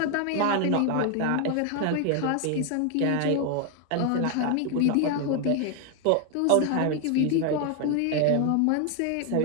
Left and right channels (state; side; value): different; both; correlation 0.01